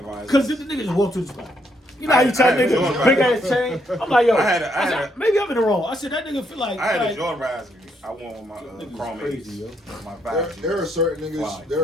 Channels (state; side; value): normal; both; correlation 0.75